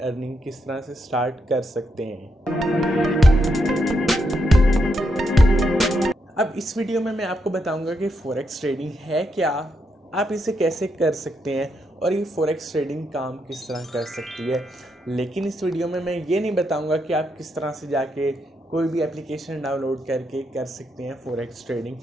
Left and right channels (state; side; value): normal; both; correlation 0.80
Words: अर्निंग किस तरह से स्टार्ट कर सकते हैं। अब इस वीडियो में मैं आपको बताऊंगा कि फॉरेक्स ट्रेडिंग है क्या, आप इसे कैसे कर सकते हैं और ये फॉरेक्स ट्रेडिंग काम किस तरह कर सकती है। लेकिन इस वीडियो में मैं ये नहीं बताऊंगा कि आप किस तरह से जाके कोई भी एप्लीकेशन डाउनलोड करके कर सकते हैं फॉरेक्स ट्रेडिंग।